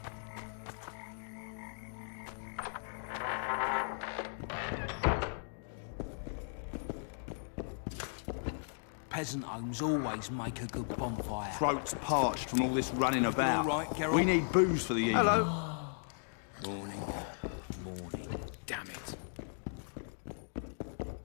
Peasant homes always make a good bonfire. Throats parched from all this running about. all right, Geralt? We need booze for the evening. Hello. Morning. Morning. Damn it.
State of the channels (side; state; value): right; silent; digital silence